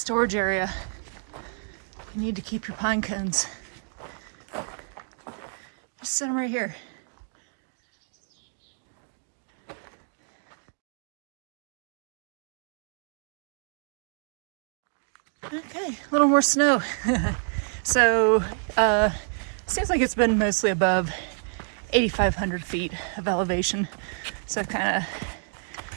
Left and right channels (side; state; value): left; silent; 58 dB below the other